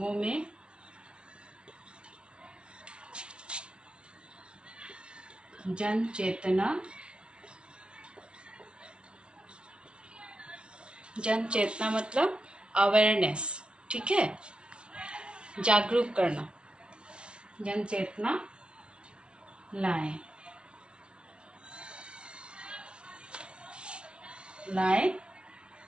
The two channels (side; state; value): left; late; 0.057 ms